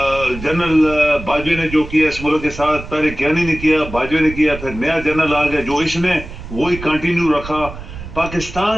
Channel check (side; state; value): right; noise; rumble, 12 dB below the sound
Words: बाजवे ने जो किया इस मुल्क के साथ, पहले ज्ञानी ने किया, बाजवे ने किया, फिर नया जनरल आ गया जो इसने वही कंटिन्यू रखा।